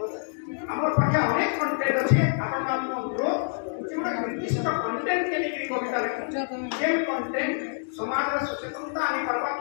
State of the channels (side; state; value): right; silent; digital silence